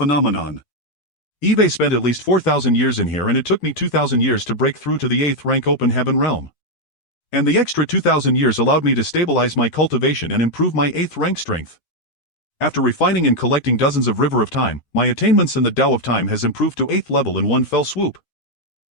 Eve spent at least 4,000 years in here, and it took me 2,000 years to break through to the 8th rank Open Heaven realm. And the extra 2,000 years allowed me to stabilize my cultivation and improve my 8th rank strength. After refining and collecting dozens of River of Time, my attainments in the Tao of Time has improved to 8th level in one fell swoop.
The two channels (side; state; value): right; late; 13 ms